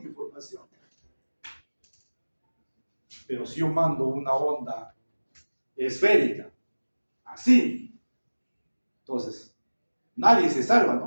información. Pero si yo mando una onda esférica, así, entonces nadie se salva,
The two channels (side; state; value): both; inverted; correlation -1.00